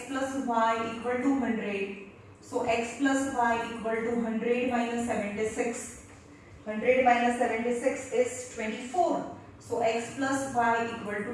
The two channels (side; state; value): both; identical; correlation 1.00